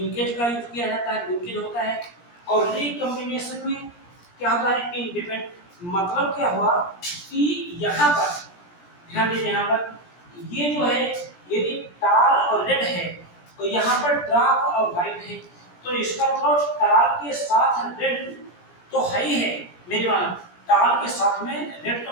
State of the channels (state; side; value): late; right; 17 ms